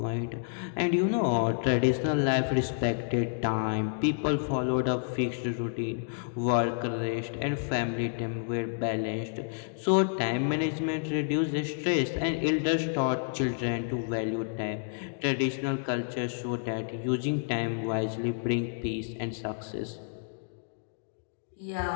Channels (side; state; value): right; silent; digital silence